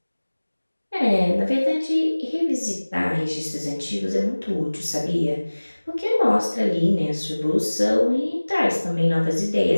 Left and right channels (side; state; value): both; inverted; correlation -1.00